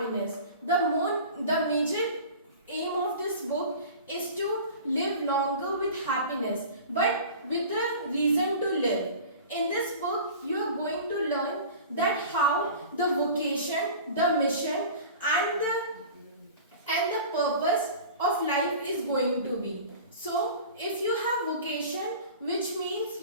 The major aim of this book is to live longer with happiness, but with the reason to live. In this book, you are going to learn that how the vocation, the mission, and the purpose of life is going to be. So, if you have vocation, which means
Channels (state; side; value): inverted; both; correlation -0.38